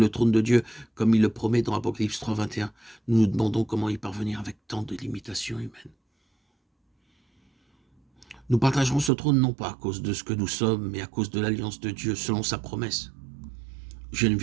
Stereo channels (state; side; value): drops out; left; at 9.1 s